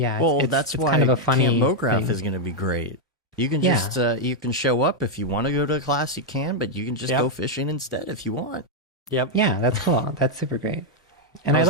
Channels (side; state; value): both; normal; correlation 0.00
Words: Well, that's it's why kind of a funny Camp Mograph thing. is going to be great. You can Yeah. just you can show up if you want to go to a class, you can, but you can just Yep. go fishing instead if you want. Yep. Yeah, that's cool. That's super great. And How I was